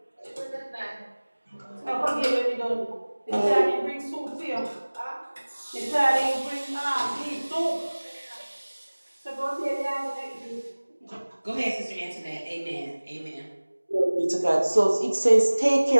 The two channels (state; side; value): inverted; both; correlation -1.00